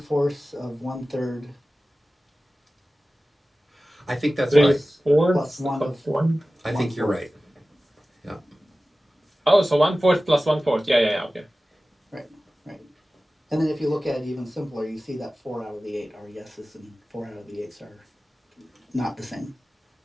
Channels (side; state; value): both; normal; correlation 0.96